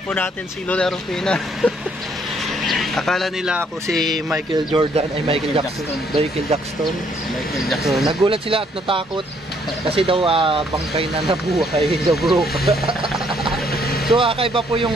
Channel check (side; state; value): both; normal; correlation 0.67